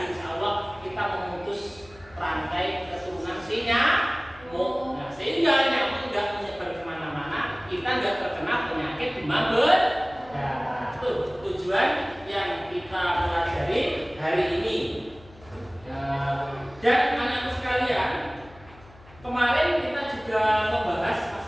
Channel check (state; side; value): noise; left; hum, 23 dB below the sound